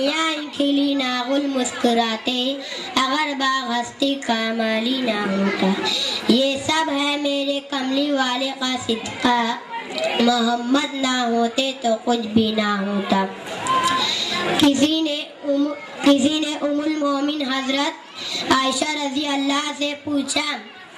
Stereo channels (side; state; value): both; identical; correlation 1.00